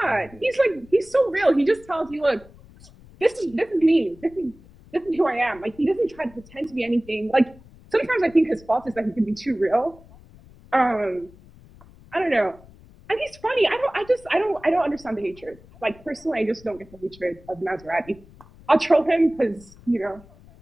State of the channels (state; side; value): noise; left; rumble, 23 dB below the sound